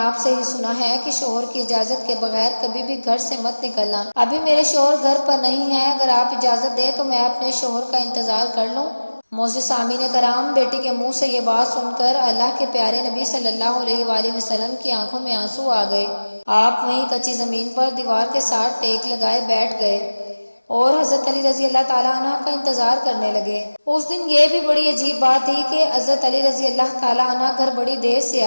سے ہی سنا ہے کہ شوہر کی اجازت کے بغیر کبھی بھی گھر سے مت نکلنا۔ ابھی میرے شوہر گھر پر نہیں ہیں، اگر آپ اجازت دیں تو میں اپنے شوہر کا انتظار کر لوں۔ معزز سامعین کرام، بیٹی کے منہ سے یہ بات سن کر اللہ کے پیارے نبی صلی اللہ علیہ وآلہ وسلم کی آنکھوں میں آنسو آ گئے۔ آپ وہیں کچی زمین پر دیوار کے ساتھ ٹیک لگائے بیٹھ گئے اور حضرت علی رضی اللہ تعالیٰ عنہ کا انتظار کرنے لگے۔ اس دن یہ بھی بڑی عجیب بات تھی کہ حضرت علی رضی اللہ تعالیٰ عنہ گھر بڑی دیر سے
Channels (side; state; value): both; inverted; correlation -1.00